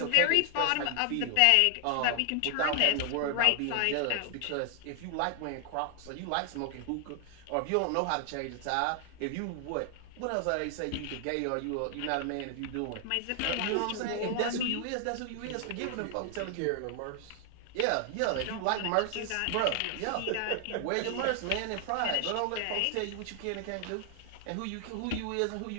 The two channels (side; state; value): both; different; correlation 0.00